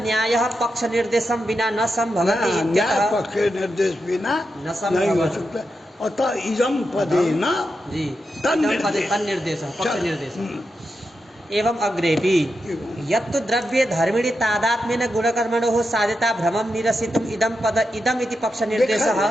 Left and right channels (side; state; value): both; normal; correlation 0.87